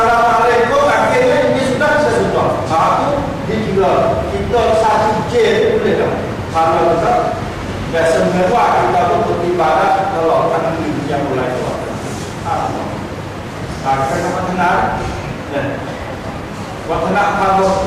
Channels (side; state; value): both; identical; correlation 1.00